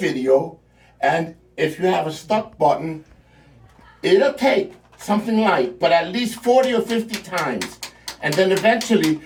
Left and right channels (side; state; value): both; identical; correlation 1.00